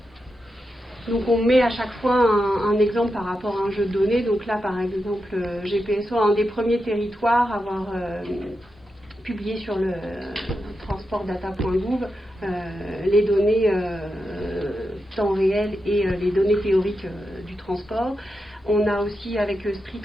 donc on met à chaque fois un exemple par rapport à un jeu de données. Donc là, par exemple, GPSO, un des premiers territoires à avoir publié sur le transportdata.gouv les données temps réel et les données théoriques du transport. On a aussi avec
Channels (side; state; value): both; normal; correlation 0.88